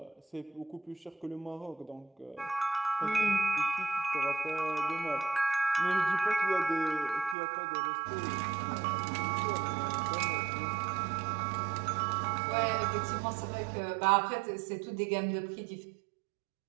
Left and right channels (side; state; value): left; drops out; at 7.4 s